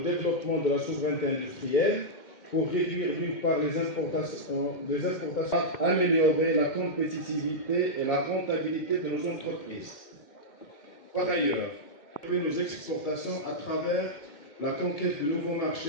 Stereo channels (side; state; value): right; late; 2.1 ms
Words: de la souveraineté industrielle pour réduire d'une part les importations, améliorer la compétitivité et la rentabilité de nos entreprises. Par ailleurs, nos exportations à travers la conquête de nouveaux